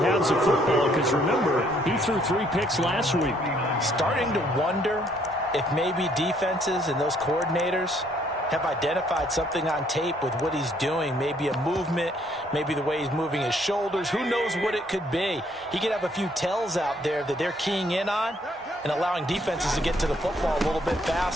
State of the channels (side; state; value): both; normal; correlation 0.66